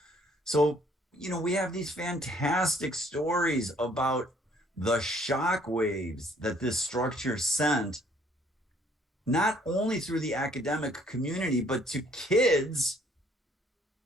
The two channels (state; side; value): normal; both; correlation 0.62